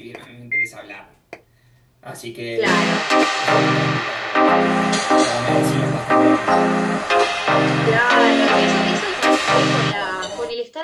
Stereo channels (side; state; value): both; identical; correlation 1.00